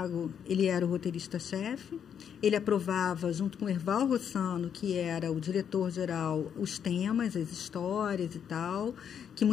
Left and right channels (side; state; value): right; quieter; 8.2 dB